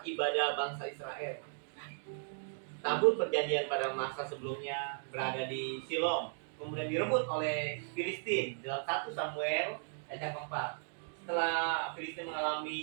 ibadah bangsa Israel. Tabut perjanjian pada masa sebelumnya berada di Silom, kemudian direbut oleh Filistin dalam 1 Samuel ayat yang keempat. Setelah Filistin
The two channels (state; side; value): silent; left; digital silence